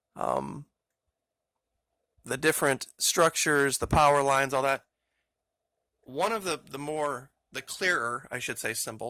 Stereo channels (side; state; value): both; identical; correlation 1.00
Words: different structures, the power lines, all that. One of the clearer, I should say,